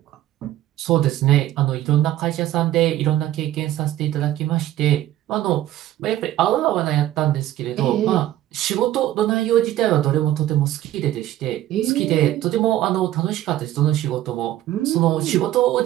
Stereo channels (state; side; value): quieter; left; 13.7 dB